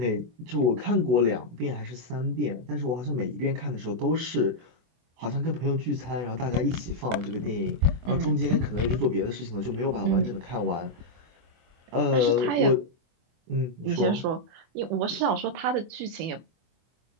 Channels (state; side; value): late; left; 24 ms